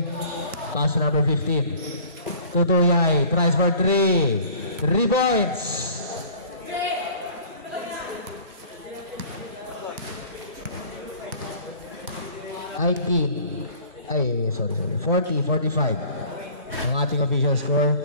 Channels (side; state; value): both; inverted; correlation -0.48